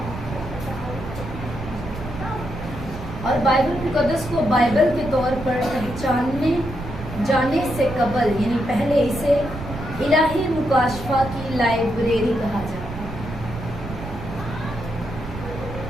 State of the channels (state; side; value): noise; right; rumble, 10 dB below the sound